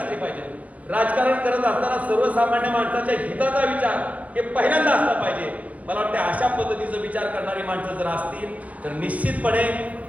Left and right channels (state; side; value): late; left; 0.069 ms